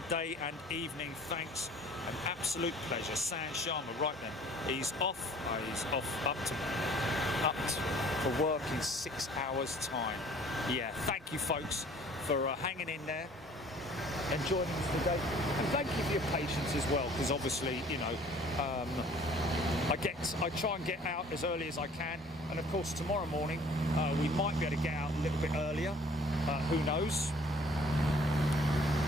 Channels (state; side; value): normal; both; correlation 0.53